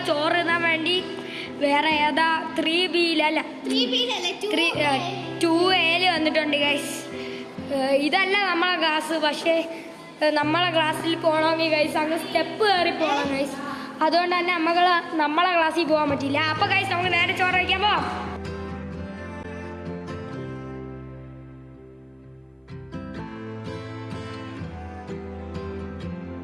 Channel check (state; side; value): identical; both; correlation 1.00